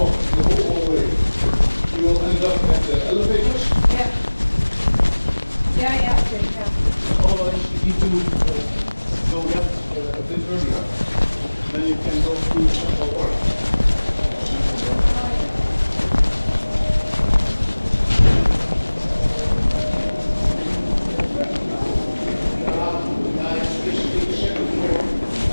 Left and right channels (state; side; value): inverted; both; correlation -1.00